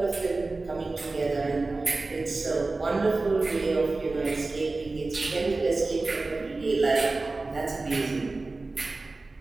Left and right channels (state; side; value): quieter; left; 3.4 dB